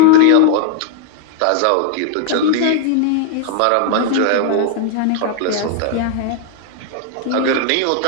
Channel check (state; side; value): different; both; correlation 0.00